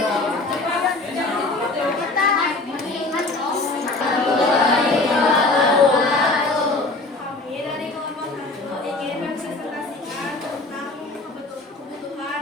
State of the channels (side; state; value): right; quieter; 3.1 dB